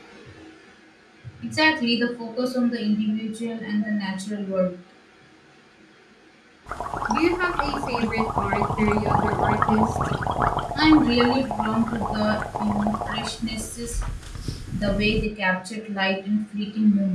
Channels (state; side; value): identical; both; correlation 1.00